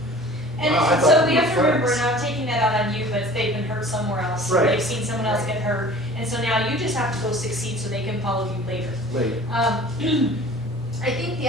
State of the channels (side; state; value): both; normal; correlation 0.45